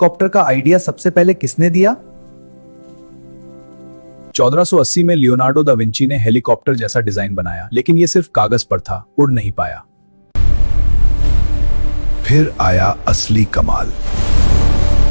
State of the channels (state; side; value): inverted; both; correlation -1.00